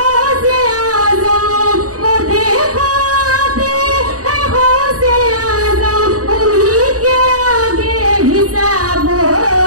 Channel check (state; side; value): late; left; 0.66 ms